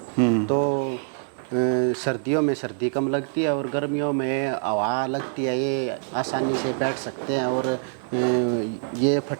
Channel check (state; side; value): silent; left; 60 dB below the other